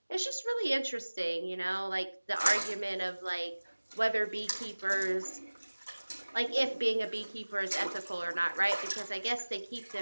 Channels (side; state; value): both; inverted; correlation -1.00